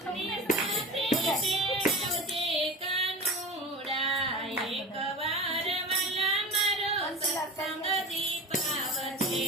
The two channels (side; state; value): both; normal; correlation 0.32